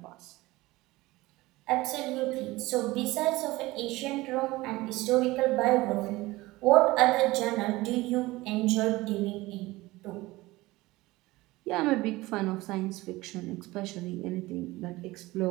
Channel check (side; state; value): left; quieter; 19.7 dB